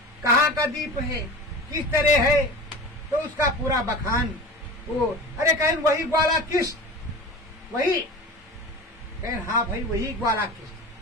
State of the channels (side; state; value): both; normal; correlation 0.33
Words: कहाँ का द्वीप है, किस तरह है? तो उसका पूरा बखान वो, अरे कहें वही ग्वाला कृष्ण, वही कहें हाँ भाई वही ग्वाला कृष्ण।